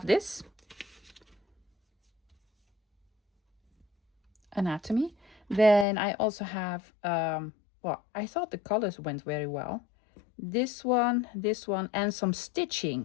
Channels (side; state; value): right; drops out; at 5.9 s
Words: this. Anatomy. Then I also have, well, I thought the colors went very well. This one, and some